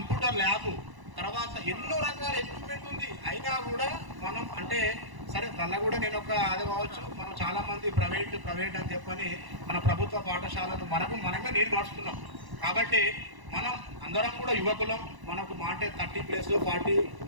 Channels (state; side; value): late; left; 1.0 ms